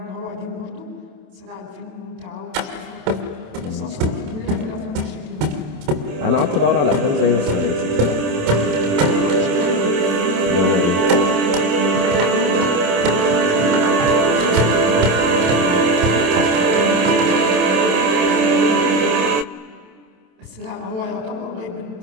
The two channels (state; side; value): late; left; 27 ms